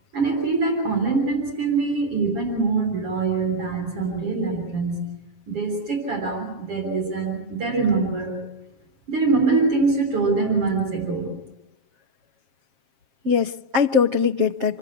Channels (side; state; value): left; late; 7.5 ms